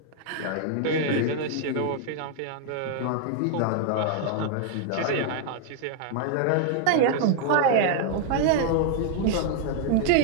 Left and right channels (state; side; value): different; both; correlation 0.00